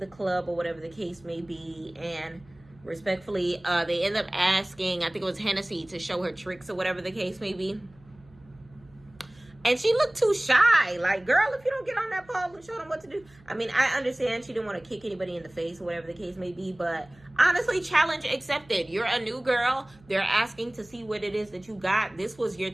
club or whatever the case may be. And respectfully, they end up asking, I think it was Hennessy, to show her tricks or whatever the case may be. And she looked too shy. Like, girl, if you don't get on that pole and show them what to do. I mean, I understand she didn't want to kick anybody in the face or whatever the case may be. But honestly, challenge accepted. You're a new girl. They're asking to see what it is that you got. This was your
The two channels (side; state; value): right; noise; hum, 27 dB below the sound